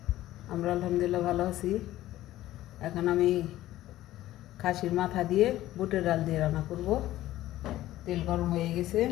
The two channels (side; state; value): right; quieter; 14.9 dB